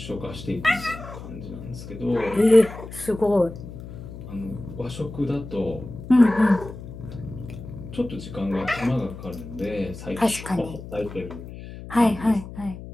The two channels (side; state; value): left; noise; hum, 12 dB below the sound